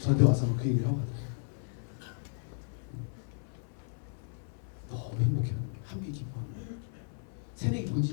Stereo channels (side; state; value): right; silent; 55 dB below the other